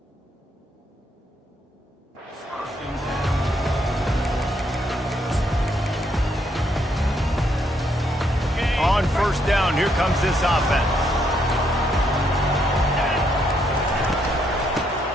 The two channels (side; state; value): both; normal; correlation 0.74